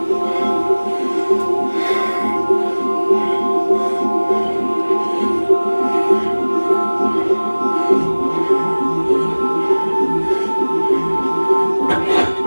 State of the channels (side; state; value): both; inverted; correlation -1.00